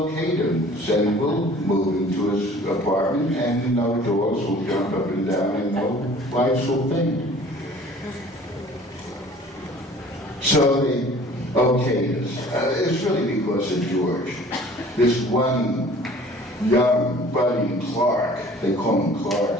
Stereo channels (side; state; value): both; normal; correlation 0.49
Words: him. And we'll move into his apartment, and no dogs will jump up and down, and no lights will faint. So they okayed us. It's really because of George. This one young budding Clark, they call him